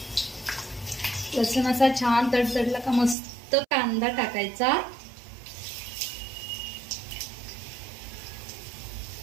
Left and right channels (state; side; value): drops out; left; at 3.2 s